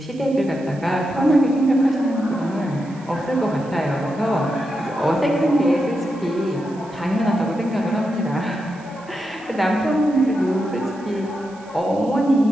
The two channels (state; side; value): noise; right; hiss, 26 dB below the sound